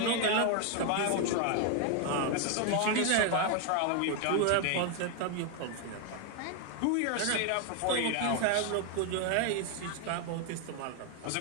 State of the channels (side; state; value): both; different; correlation 0.01